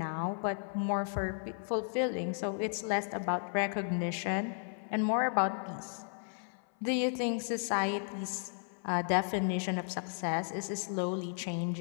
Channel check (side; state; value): right; silent; 55 dB below the other